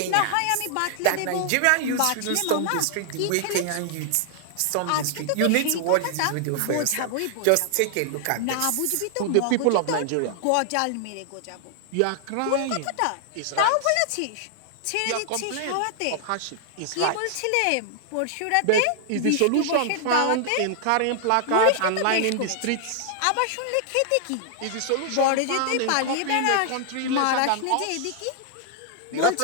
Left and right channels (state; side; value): different; both; correlation 0.00